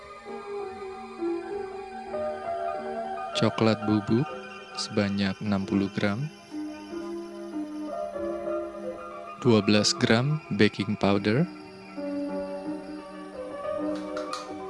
coklat bubuk sebanyak 60 gram, 12 gram baking powder,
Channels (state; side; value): identical; both; correlation 1.00